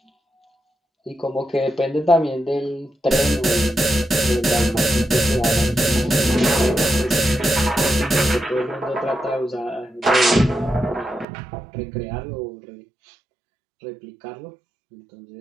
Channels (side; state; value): left; drops out; at 11.2 s